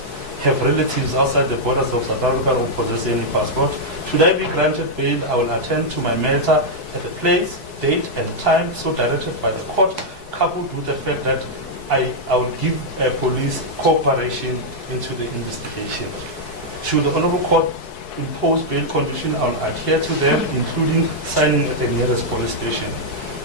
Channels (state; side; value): late; right; 4.7 ms